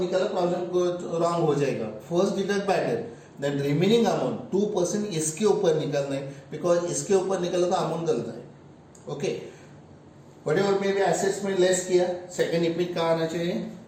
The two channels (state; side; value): identical; both; correlation 1.00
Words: प्रॉब्लम रॉन्ग हो जाएगा. First deduct bad debt, then remaining amount 2% इसके ऊपर निकलना है बिकॉज इसके ऊपर निकला तो अमाउंट गलत है. Okay. Whatever may be assets में लेस किया. सेकंड इपिट कहाँ आना चाहिए?